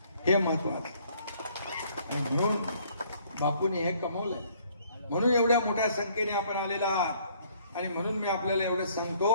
हे महत्वाचं. आणि म्हणून बापूने हे कमवलंय. म्हणून एवढ्या मोठ्या संख्येने आपण आलेला आहात. आणि म्हणून मी आपल्याला एवढं सांगतो,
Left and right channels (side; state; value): both; inverted; correlation -0.61